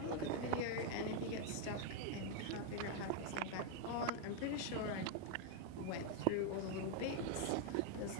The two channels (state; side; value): different; both; correlation 0.01